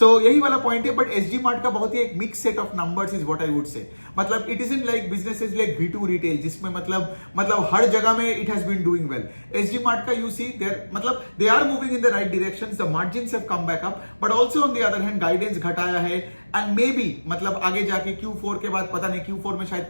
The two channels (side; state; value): both; inverted; correlation -1.00